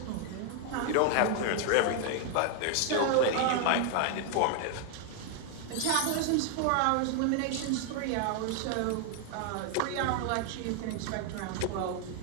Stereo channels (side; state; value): both; different; correlation 0.00